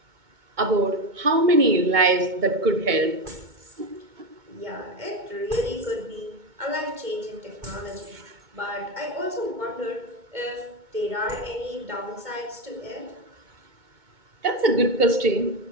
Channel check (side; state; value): left; late; 2.2 ms